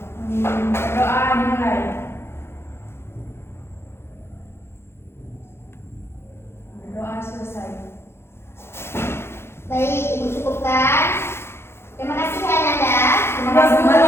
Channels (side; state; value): right; late; 0.12 ms